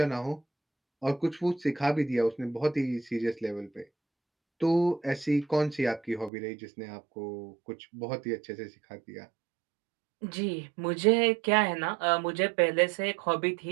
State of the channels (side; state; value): left; drops out; at 6.3 s